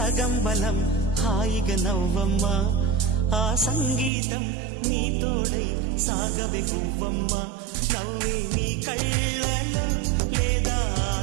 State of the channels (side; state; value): left; drops out; at 4.1 s